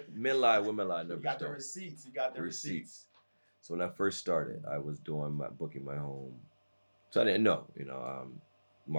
lie, numbers You got the don't. receipts. You got the receipts. So when I first started, I was booking my home. So I didn't know,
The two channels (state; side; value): inverted; both; correlation -1.00